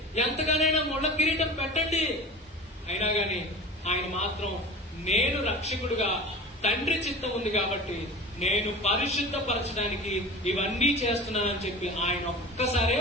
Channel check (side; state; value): both; normal; correlation 0.34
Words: ఎంతగానైనా ముళ్ళ కిరీటం పెట్టండి, అయినా గాని ఆయన మాత్రం నేను రక్షకుడుగా తండ్రి చిత్తం ఉంది కాబట్టి నేను పరిశుద్ధపరచడానికి ఇవన్నీ చేస్తున్నానని చెప్పి ఆయన ఒక్కసారే